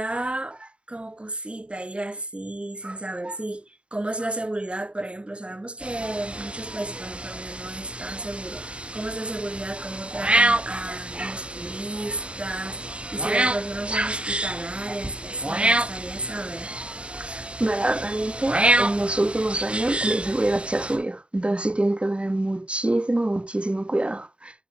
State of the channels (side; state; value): left; late; 0.057 ms